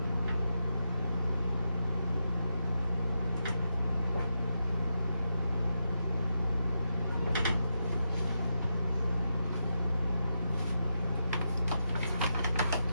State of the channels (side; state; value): both; inverted; correlation -0.85